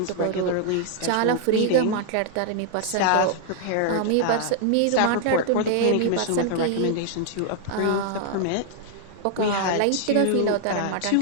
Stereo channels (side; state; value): both; different; correlation 0.00